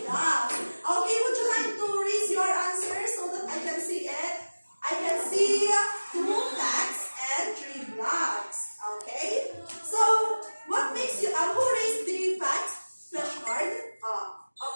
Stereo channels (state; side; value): inverted; both; correlation -1.00